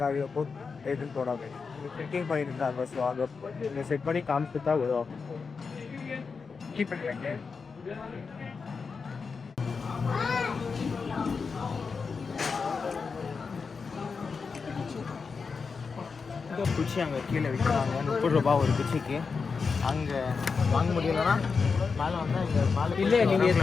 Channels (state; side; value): quieter; right; 5.1 dB